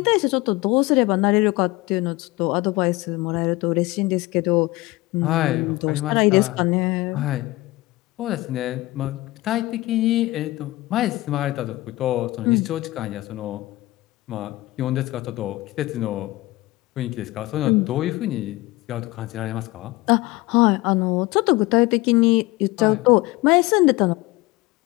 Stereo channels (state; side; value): quieter; right; 19.8 dB